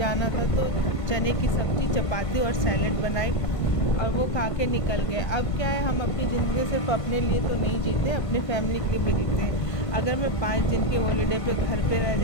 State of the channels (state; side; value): late; right; 1.5 ms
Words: था तो चने की सब्ज़ी, चपाती और सैलेड बनाई और वो खा के निकल गए। अब क्या है, हम अपनी ज़िंदगी सिर्फ अपने लिए तो नहीं जीते, अपनी फैमिली के लिए भी जीते हैं। अगर मैं 5 दिन के हॉलीडे पे घर पे रह